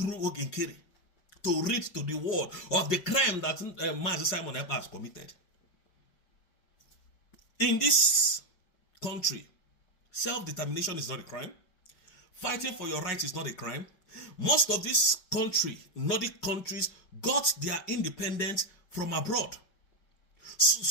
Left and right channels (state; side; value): late; right; 5.4 ms